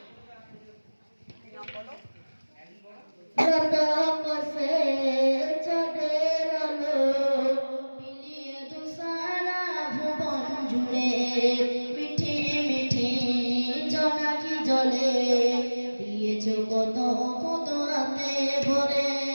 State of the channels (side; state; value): both; inverted; correlation -1.00